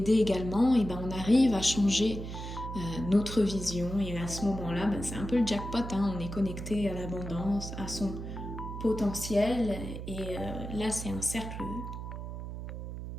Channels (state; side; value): noise; right; hum, 8 dB below the sound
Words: également, et on arrive à changer notre vision, et à ce moment-là, c'est un peu le jackpot, on est connecté à l'abondance, à son potentiel, et là c'est un cercle